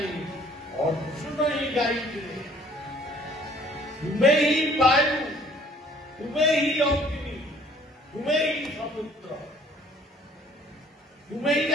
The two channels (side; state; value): both; normal; correlation 0.57